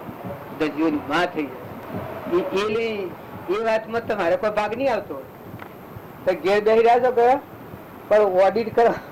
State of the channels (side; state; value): both; identical; correlation 1.00